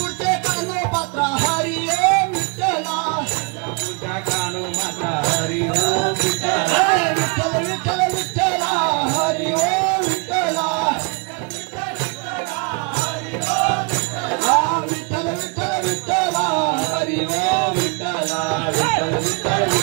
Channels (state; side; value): quieter; left; 32.4 dB